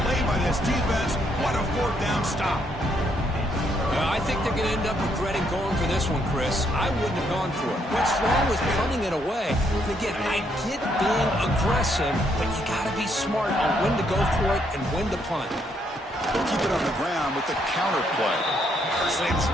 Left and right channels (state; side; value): normal; both; correlation 0.73